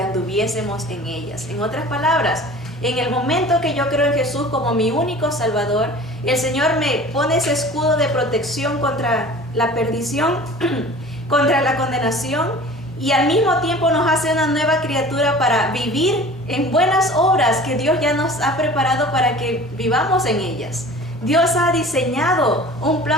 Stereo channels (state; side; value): normal; both; correlation 0.42